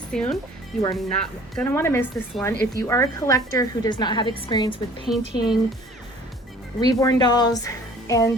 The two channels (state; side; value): normal; both; correlation 0.51